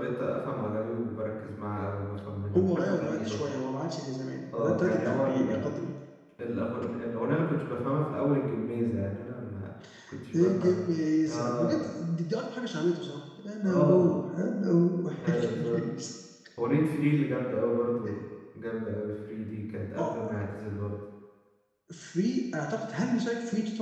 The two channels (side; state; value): both; identical; correlation 1.00